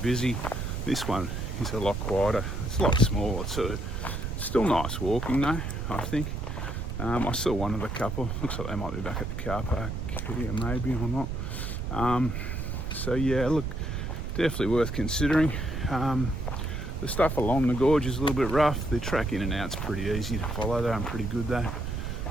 this one is a lot quieter. It's a lot smaller too. Still nice walking though, I think. I saw one of the couple. Looks like they might be back at the car park here, maybe or not. So yeah, look, definitely worth considering. The stuff along the gorge is a little bit rough. The track in and out's pretty easy to follow though, and pretty good though.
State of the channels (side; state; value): right; noise; rumble, 4 dB below the sound